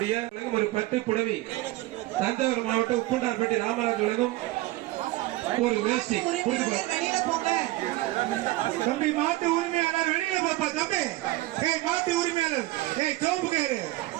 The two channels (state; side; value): quieter; left; 18.5 dB